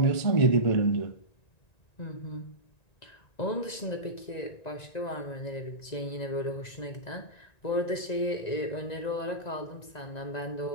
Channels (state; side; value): late; right; 1.9 ms